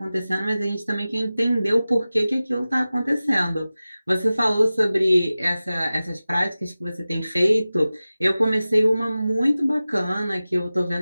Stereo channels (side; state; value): both; inverted; correlation -0.96